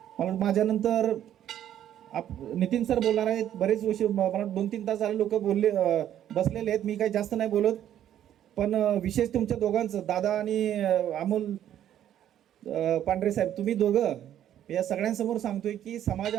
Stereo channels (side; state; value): left; quieter; 11.0 dB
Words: माझ्यानंतर नितीन सर बोलणार आहेत. बरेच विषय मला 2-3 तास झाले लोक बोलले बसलेले आहेत. मी काही जास्त नाही बोलत, पण विशेष तुमच्या दोघांचं, दादा आणि अमोल पांढरे साहेब, तुम्ही दोघं या सगळ्यांसमोर सांगतोय की